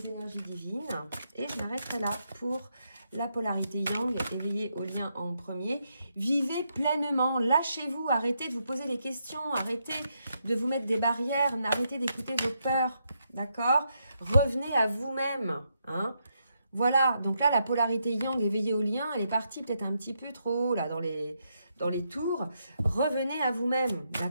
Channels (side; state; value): both; inverted; correlation -0.80